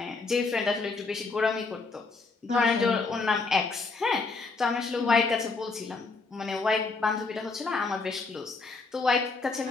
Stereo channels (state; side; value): quieter; right; 4.0 dB